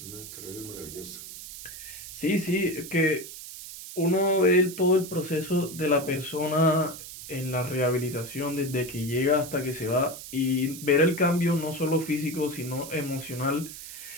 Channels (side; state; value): right; noise; hiss, 12 dB below the sound